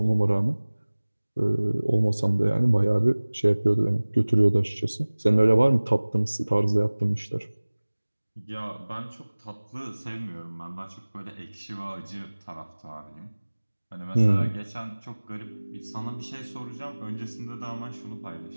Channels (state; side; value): inverted; both; correlation -1.00